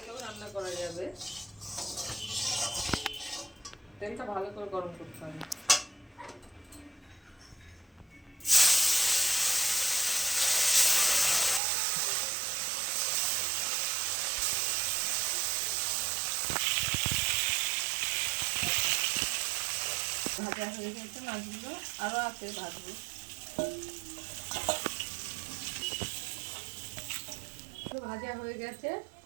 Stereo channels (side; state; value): left; drops out; at 11.6 s